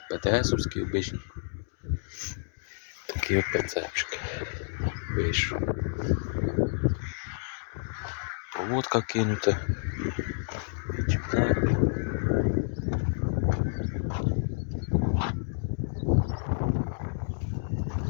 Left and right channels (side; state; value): right; silent; digital silence